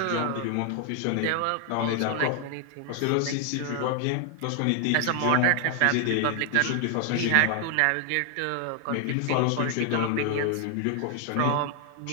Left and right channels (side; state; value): both; different; correlation 0.00